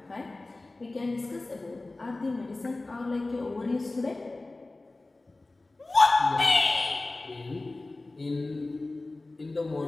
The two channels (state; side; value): quieter; right; 3.1 dB